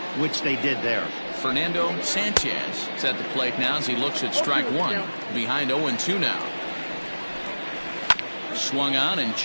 which they did there. Fernando Sanchez is at the plate now as he looks at strike 1. Behind 0-2 now. Swung on and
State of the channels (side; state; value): both; inverted; correlation -1.00